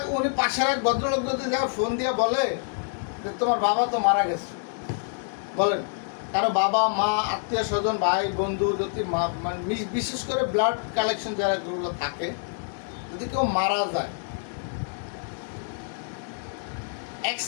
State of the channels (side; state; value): right; silent; digital silence